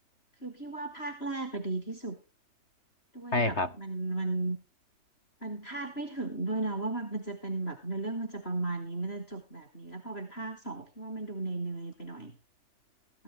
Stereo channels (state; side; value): late; right; 3.0 ms